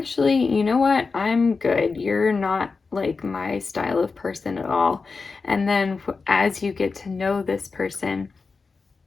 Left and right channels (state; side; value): quieter; right; 4.4 dB